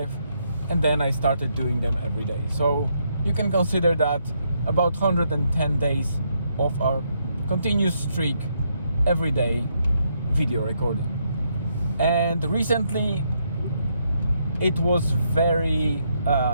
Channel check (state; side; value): inverted; both; correlation -0.76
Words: and then I started doing them every day. So you can consider that about 110 days of a continuous streak every day video recording. And recently it was very